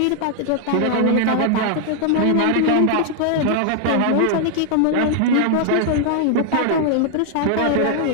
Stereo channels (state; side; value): different; both; correlation 0.00